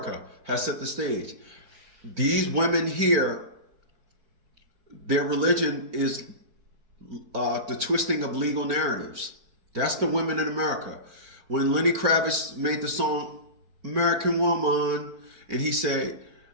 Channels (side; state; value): left; late; 4.4 ms